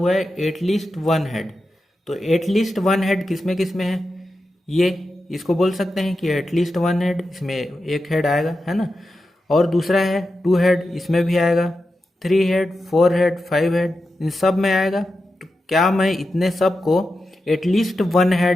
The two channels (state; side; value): normal; both; correlation 0.90